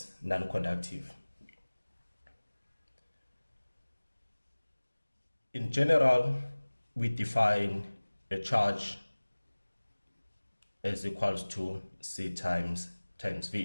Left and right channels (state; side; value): inverted; both; correlation -1.00